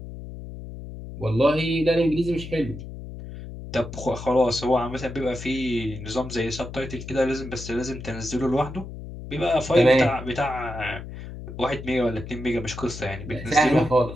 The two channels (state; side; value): noise; left; hum, 11 dB below the sound